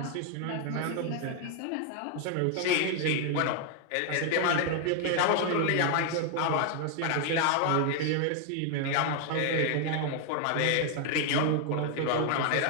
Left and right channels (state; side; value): different; both; correlation 0.00